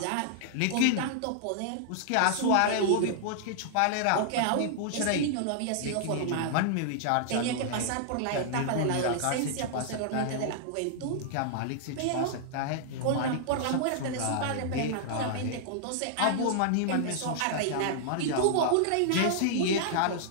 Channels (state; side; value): different; both; correlation -0.01